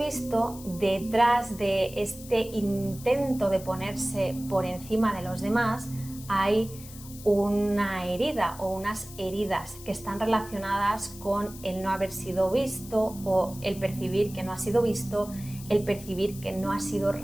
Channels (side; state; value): left; noise; hiss, 16 dB below the sound